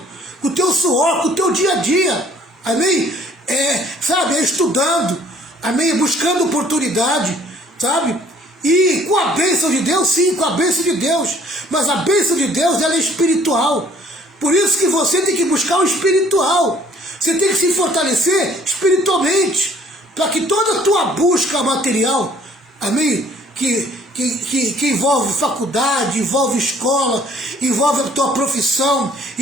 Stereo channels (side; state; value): both; normal; correlation 0.58